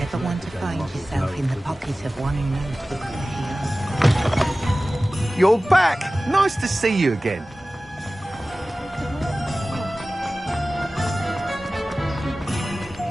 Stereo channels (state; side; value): normal; both; correlation 0.97